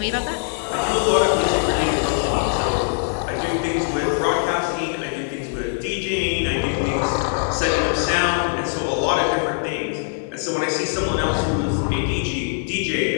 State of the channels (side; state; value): right; silent; 64 dB below the other